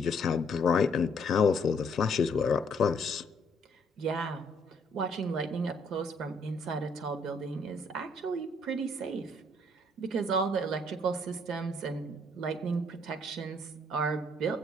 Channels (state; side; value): normal; both; correlation 0.66